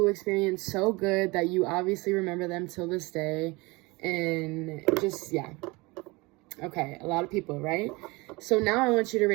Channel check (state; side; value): quieter; left; 24.3 dB